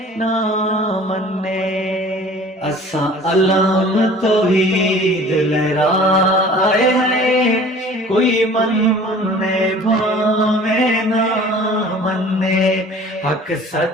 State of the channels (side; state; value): both; normal; correlation 0.47